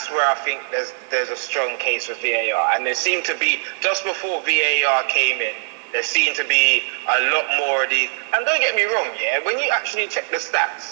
where I think there's a strong case for VAR, and there seemed to be, just before VAR came in, there seemed to be a lot more of these. And don't get me wrong, when you actually check the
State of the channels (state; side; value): silent; left; digital silence